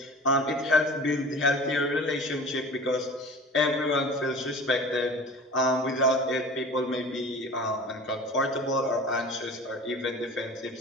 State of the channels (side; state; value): both; normal; correlation 0.40